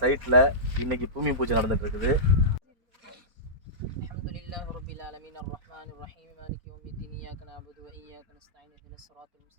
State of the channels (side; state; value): left; late; 4.2 ms